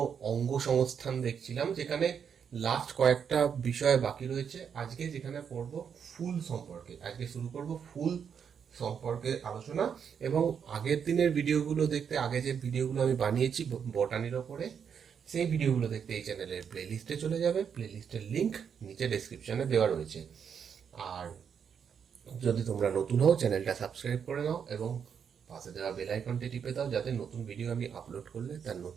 অঙ্গ সংস্থান দেখছিলাম, যেখানে লাস্ট কয়েকটা বিষয় বাকি রয়েছে। আজকে যেখানে পড়ব ফুল সম্পর্কে, আজকে শুরু করব ফুল সম্পর্কে আলোচনা। এবং আগের দিনের ভিডিওগুলো দেখতে, আগে যে ভিডিওগুলো আমি বানিয়েছি বটানির ওপরে, সেই ভিডিওগুলো দেখতে এই চ্যানেলের প্লেলিস্টে চলে যাবে। প্লেলিস্টের লিংক নিচে ডেসক্রিপশনে দেওয়া রয়েছে। আর যদি তোমরা নতুন হও, চ্যানেলটা সাবস্ক্রাইব করে নাও এবং পাশে দেওয়া বেল আইকনটি টিপে দাও, যাতে নতুন ভিডিও আমি আপলোড করলে তার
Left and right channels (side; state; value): left; quieter; 7.3 dB